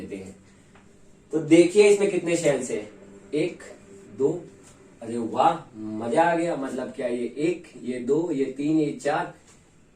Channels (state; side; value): identical; both; correlation 1.00